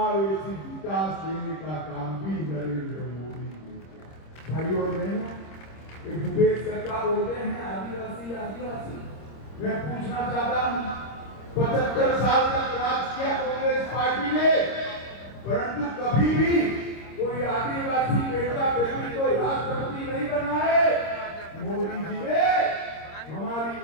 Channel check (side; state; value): right; late; 26 ms